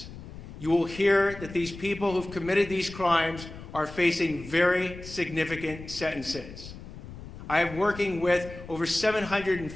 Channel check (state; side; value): noise; left; rumble, 14 dB below the sound